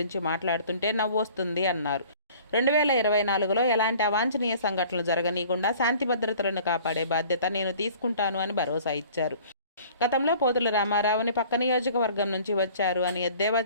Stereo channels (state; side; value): inverted; both; correlation -0.49